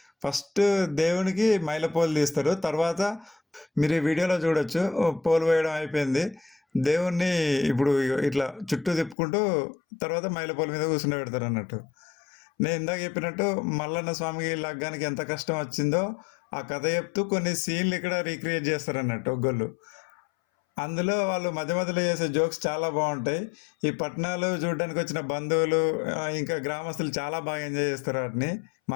ఫస్ట్ దేవునికి మైలపోలు తీస్తారు, తర్వాత మీరు ఈ వీడియోలో చూడొచ్చు పోలు వేయడం అయిపోయింది. దేవుణ్ణి ఇప్పుడు ఇట్లా చుట్టూ తిప్పుకుంటూ తర్వాత మైలపోలు మీద కూర్చుని పెడతారు అన్నట్టు. నేను ఇందాక చెప్పినట్టు మల్లన్న స్వామికి లగ్గానికి ఎంత కష్టం వచ్చిందో ఆ కథ చెప్తూ కొన్ని సీన్లు ఇక్కడ రీక్రియేట్ చేస్తారు అన్నట్టు ఒగ్గోళ్ళు. అందులో వాళ్ళు మధ్య మధ్యలో చేసే జోక్స్ చాలా బాగుంటాయి. ఈ పట్టణాలు చూడడానికి వచ్చిన బంధువులు ఇంకా గ్రామస్తులు చాలా బాగా ఎంజాయ్ చేస్తారు వాటిని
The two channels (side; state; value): right; drops out; at 9.2 s